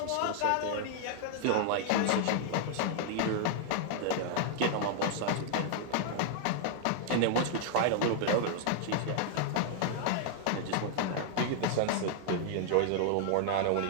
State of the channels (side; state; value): both; different; correlation 0.00